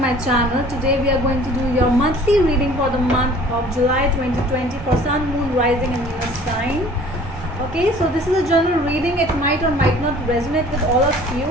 channel. Today we are going to do your monthly reading for the month of July 2020 for Sun, Moon, Rising and Venus sign. Okay, so this is a general reading. It might or might not resonate with all of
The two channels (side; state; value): both; normal; correlation 0.49